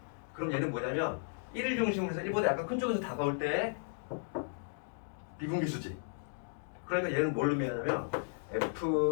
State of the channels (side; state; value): right; silent; digital silence